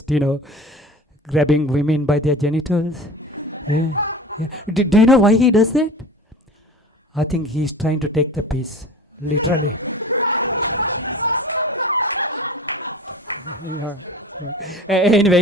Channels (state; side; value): normal; both; correlation 0.39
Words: grabbing women by their genitals. Yeah. Do you know why he does that? I think he's trying to take the piss, literally. Yeah.